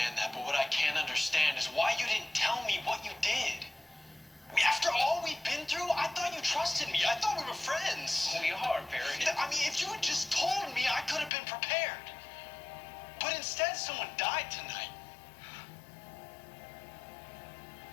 that, but what I can't understand is why you didn't tell me what you did. I mean, after all we've been through, I thought you trusted me. I thought we were friends. We are, Perry. I mean, if you had just told me, I could have been prepared. But instead, someone died tonight.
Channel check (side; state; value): right; drops out; at 11.3 s